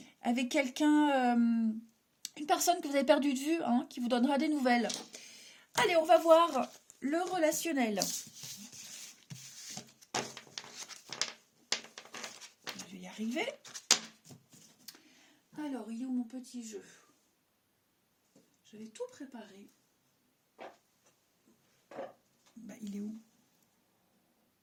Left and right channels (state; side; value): identical; both; correlation 1.00